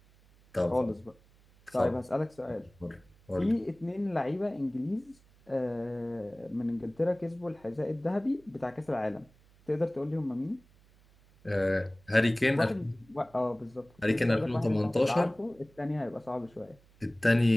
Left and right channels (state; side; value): noise; right; hum, 29 dB below the sound